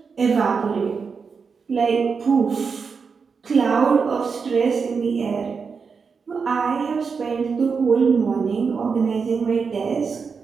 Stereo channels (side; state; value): left; quieter; 5.4 dB